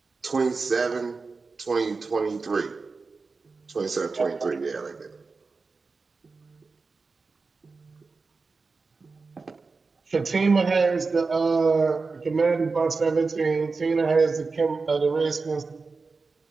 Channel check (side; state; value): left; quieter; 4.2 dB